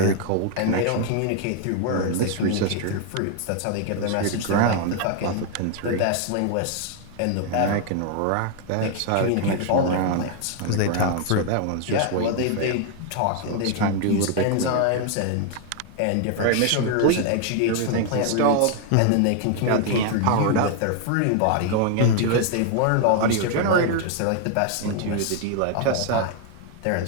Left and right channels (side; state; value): both; different; correlation 0.00